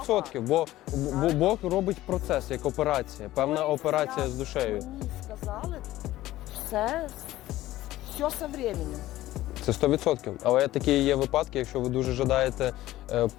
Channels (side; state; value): right; quieter; 15.6 dB